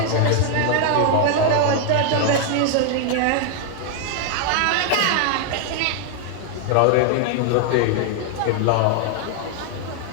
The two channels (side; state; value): both; different; correlation 0.00